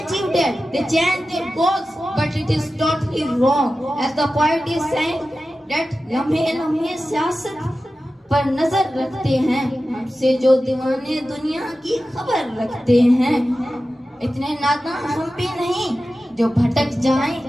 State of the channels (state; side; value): normal; both; correlation 0.94